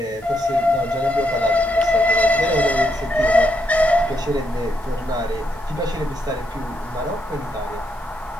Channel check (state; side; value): normal; both; correlation 0.78